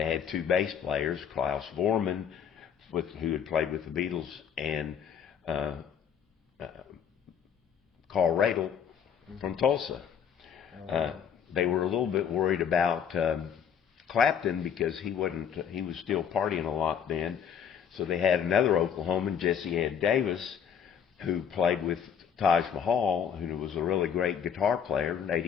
had 2 bass players, Klaus Vormann, who had played with the Beatles, and Carl Radle from Tulsa. They were a little bit worried about Clapton because he was still partying a lot then. So they had another Oklahoman, Jesse Ed Davis, who played with Taj Mahal, who was a really great guitar player,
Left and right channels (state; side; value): quieter; right; 7.9 dB